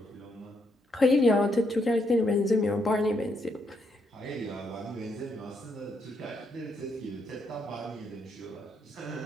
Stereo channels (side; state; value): both; normal; correlation 0.76